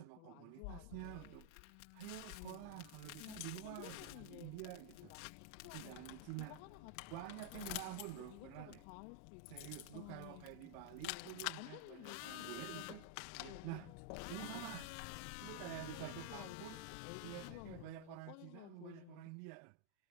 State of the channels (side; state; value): both; different; correlation 0.00